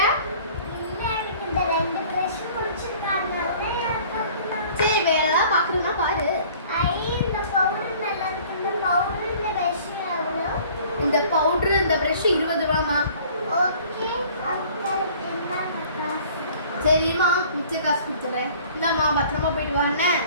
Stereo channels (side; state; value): both; inverted; correlation -0.51